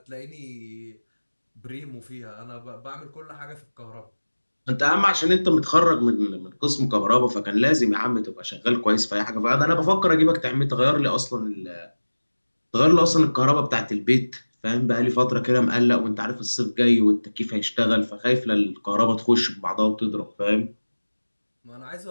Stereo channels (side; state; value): both; inverted; correlation -1.00